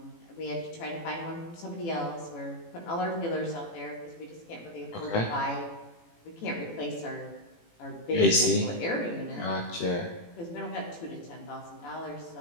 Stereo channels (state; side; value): late; right; 18 ms